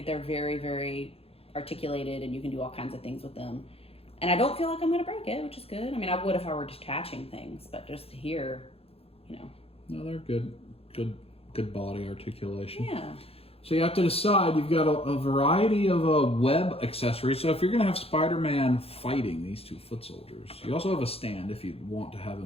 they're very, very articulated, and you can do all kinds of things with them. And I don't feel like I'm going to break it, which is good. I mean, I would if I were detaching things, but just here, you know. No, they're good. Good body articulation. Yeah. So you have to decide. You've got a variety of web accessories. So if you're going to have Spider-Man fighting these 2 foot soldiers, you also have a stand if you want to have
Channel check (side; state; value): right; late; 0.28 ms